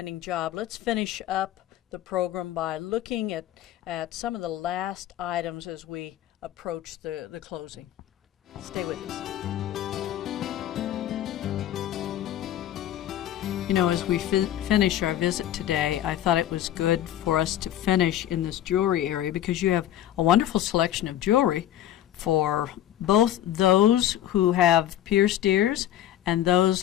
job. Let's finish up the program by looking at some of the last items as we approach the closing. Stay with us. You know, as we finish our visit today, I thought it was good for us to finish in this jewelry area, because you have a wonderful selection of jewelry for both those who have pierced ears and those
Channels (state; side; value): quieter; right; 12.1 dB